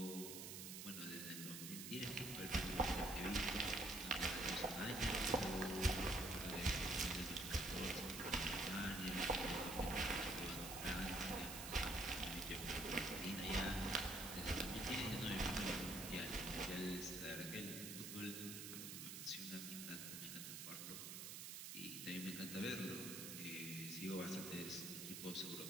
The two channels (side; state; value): right; noise; hiss, 7 dB below the sound